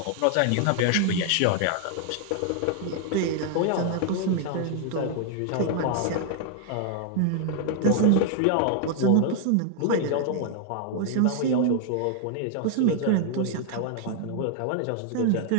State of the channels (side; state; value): both; different; correlation 0.00